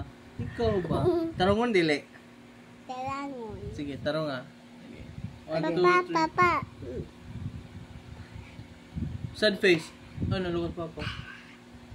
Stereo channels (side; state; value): both; identical; correlation 1.00